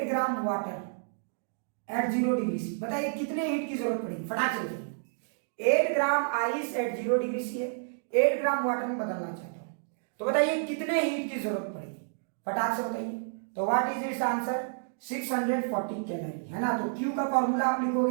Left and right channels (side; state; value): left; silent; digital silence